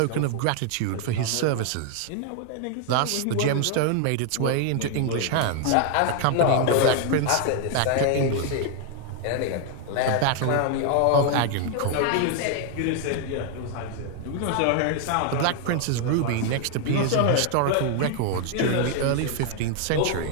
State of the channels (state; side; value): different; both; correlation 0.00